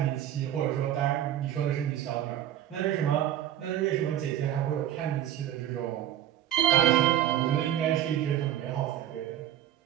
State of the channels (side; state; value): left; quieter; 11.8 dB